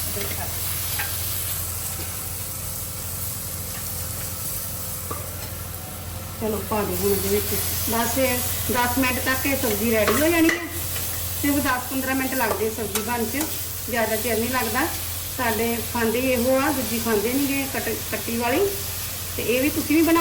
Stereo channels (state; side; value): identical; both; correlation 1.00